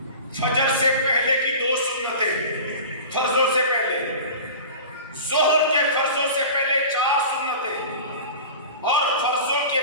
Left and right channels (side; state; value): both; inverted; correlation -0.36